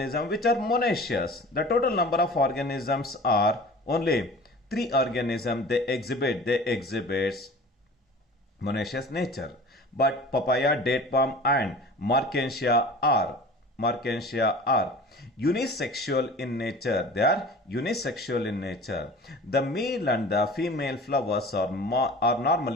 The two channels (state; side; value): normal; both; correlation 0.41